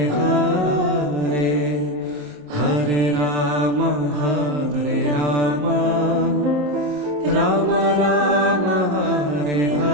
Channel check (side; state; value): left; late; 27 ms